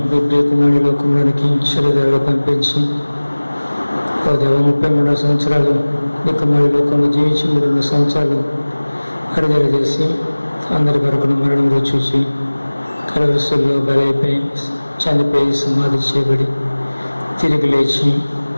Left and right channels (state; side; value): inverted; both; correlation -1.00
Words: ఈ ప్రియకుమారి లోకంలోనికి శరీరాలు పంపించి ఓ దేవ 33 సంవత్సరాలు ఈ కుమారి లోకంలో జీవించి 3 సంవత్సరాలు అరుదల చేసి అందరి వరకు మరణం చూసి కలవరసుల్లో బలైపోయి చనిపోయి సమాధి చేయబడి తిరిగి లేచి